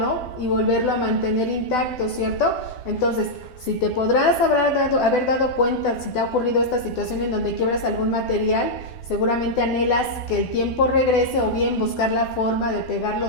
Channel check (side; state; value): right; late; 12 ms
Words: y volverlo a mantener intacto, ¿cierto? Entonces, si te podrás haber dado cuenta, si te ha ocurrido esta situación en donde quiebras algún material, seguramente anhelas que el tiempo regrese o bien buscar la forma de pegarlo